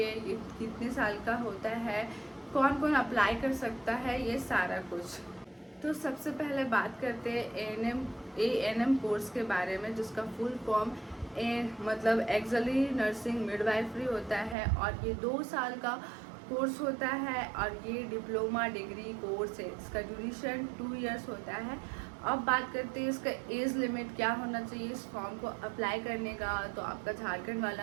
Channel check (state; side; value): drops out; left; at 14.6 s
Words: ये कितने साल का होता है, कौन कौन अप्लाई कर सकता है, ये सारा कुछ। तो सबसे पहले बात करते हैं एएनएम कोर्स के बारे में, जिसका फुल फॉर्म मतलब एक्सली नर्सिंग मिडवाइफरी होता है। और ये 2 साल का कोर्स होता है और ये डिप्लोमा डिग्री कोर्स है। इसका ड्यूरेशन 2 इयर्स होता है। अब बात करते हैं इसका एज लिमिट क्या होना चाहिए इस फॉर्म को अप्लाई करने का। तो आपका झारखंड